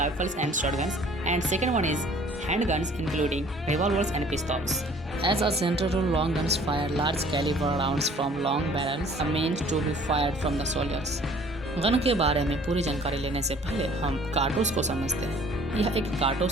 and shotguns, and second one is handguns including revolvers and pistols. As a general rule, long guns fire large caliber rounds from long barrels meant to be fired from the soldiers. Gun के बारे में पूरी जानकारी लेने से पहले हम कारतूस को समझते हैं। यह एक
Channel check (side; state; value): both; normal; correlation 0.53